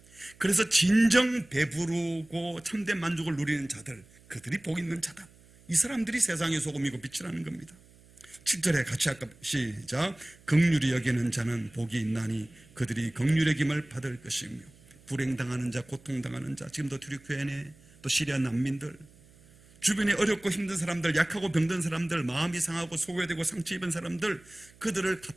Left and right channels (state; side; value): noise; right; hum, 26 dB below the sound